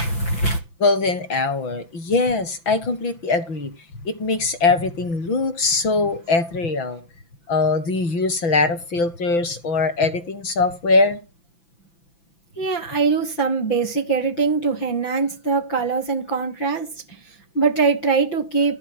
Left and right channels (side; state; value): right; late; 5.9 ms